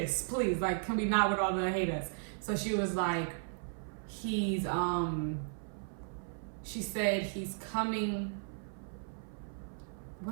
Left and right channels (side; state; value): left; silent; 54 dB below the other